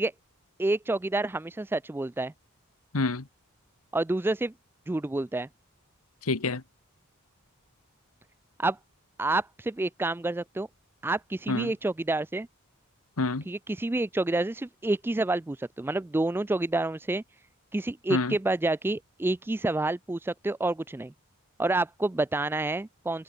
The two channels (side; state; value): both; normal; correlation 0.73